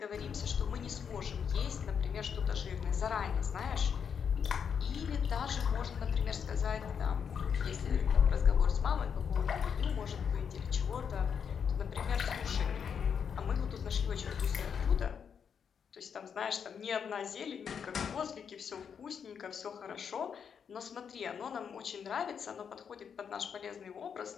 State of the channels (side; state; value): right; quieter; 7.1 dB